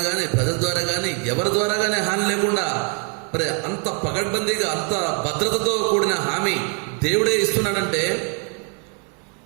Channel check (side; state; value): left; quieter; 38.6 dB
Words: కానీ, ప్రజల ద్వారా కానీ, ఎవరి ద్వారా కానీ హాని లేకుండా మరి అంత పగడ్బందీగా, అంత భద్రతతో కూడిన హామీ దేవుడే ఇస్తున్నాడంటే